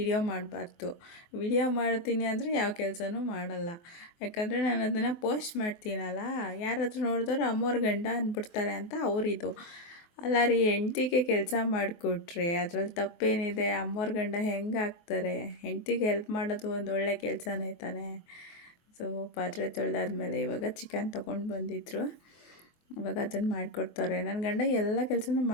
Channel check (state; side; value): late; right; 24 ms